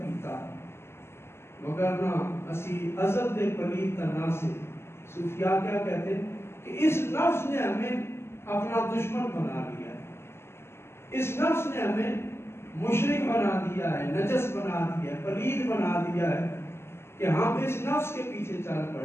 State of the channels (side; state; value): right; late; 0.12 ms